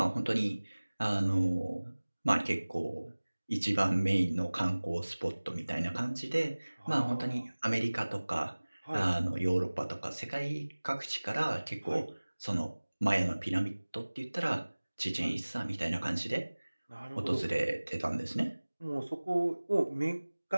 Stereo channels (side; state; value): both; inverted; correlation -1.00